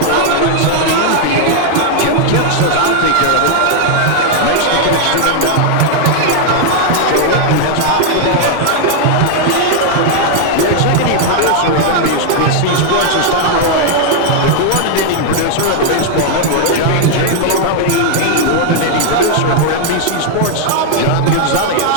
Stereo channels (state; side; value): different; both; correlation 0.00